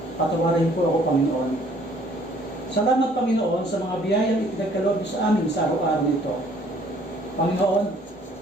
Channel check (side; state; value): both; normal; correlation 0.59